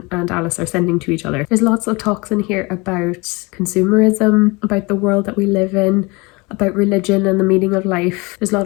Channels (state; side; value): quieter; right; 26.0 dB